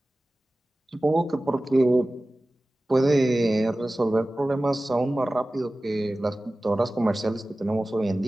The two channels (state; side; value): normal; both; correlation 0.97